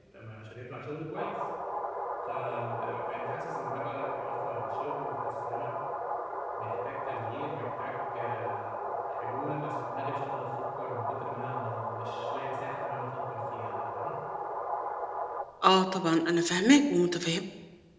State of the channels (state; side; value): identical; both; correlation 1.00